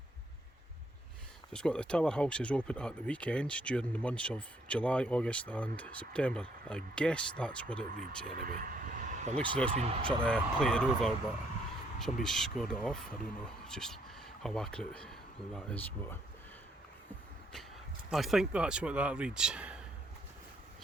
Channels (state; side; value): normal; both; correlation 0.70